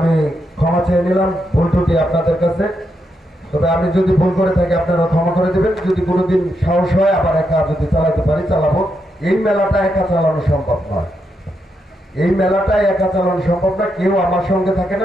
ক্ষমা চেয়ে নিলাম ভুল ত্রুটি আপনাদের কাছে। তবে আমি যদি ভুল করে থাকি আপনারা ক্ষমা করে দেবেন। যদি কোনোদিন সাহস হয় আবার একা যদি চালাতে পারি চালাবো। এই মেলাটা একা চালানো সম্ভব নয়, এই মেলাটাই একা চালানো সম্ভব না, কেউ আমার সঙ্গে থাকে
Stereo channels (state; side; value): normal; both; correlation 0.82